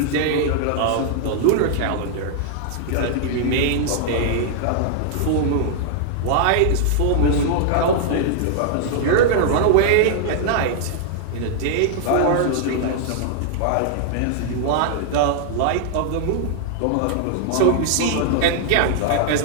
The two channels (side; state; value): both; different; correlation -0.01